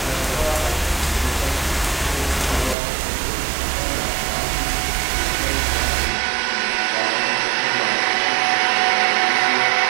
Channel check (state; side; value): drops out; left; at 2.8 s